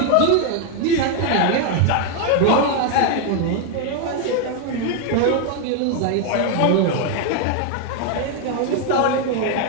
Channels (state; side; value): different; both; correlation 0.01